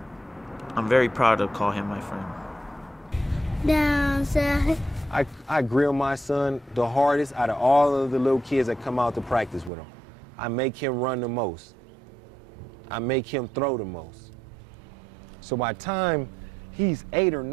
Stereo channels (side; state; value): left; drops out; at 9.7 s